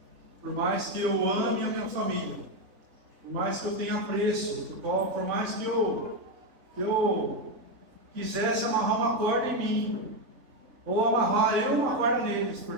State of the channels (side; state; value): left; late; 3.7 ms